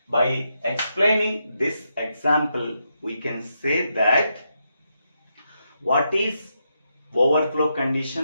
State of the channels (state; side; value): inverted; both; correlation -0.82